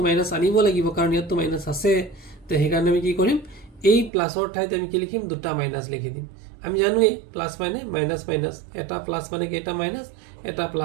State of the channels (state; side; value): drops out; left; at 4.1 s